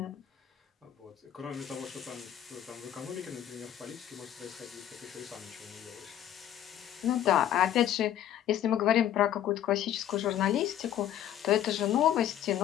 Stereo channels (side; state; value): right; quieter; 11.3 dB